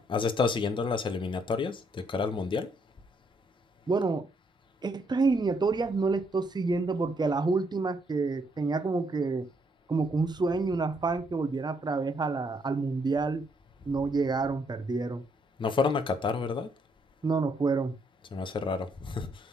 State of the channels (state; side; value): normal; both; correlation 0.72